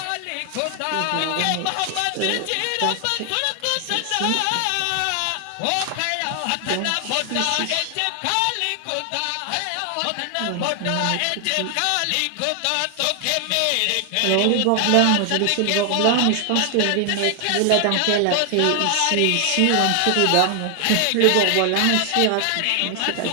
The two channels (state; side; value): different; both; correlation 0.00